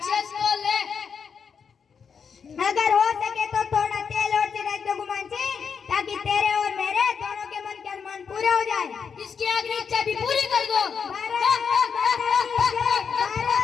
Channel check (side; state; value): right; quieter; 6.4 dB